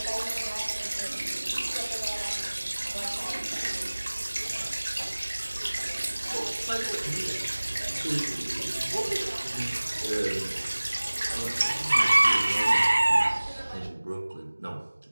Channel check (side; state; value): both; inverted; correlation -1.00